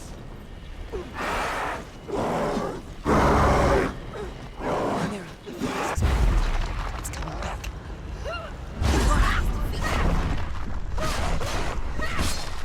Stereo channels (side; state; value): both; identical; correlation 1.00